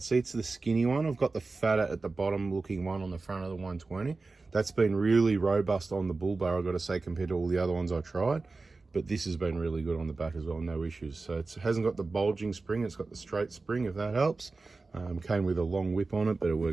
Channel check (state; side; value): quieter; left; 3.7 dB